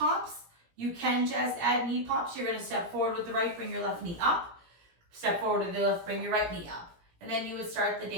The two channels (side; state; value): left; late; 17 ms